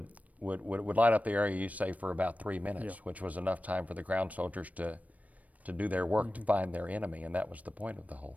light up the area, you say, for about 3 minutes, Yeah. which was enough time for the ground soldiers to do their work to find their enemy, and that was the point of the whole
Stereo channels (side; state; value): left; late; 0.070 ms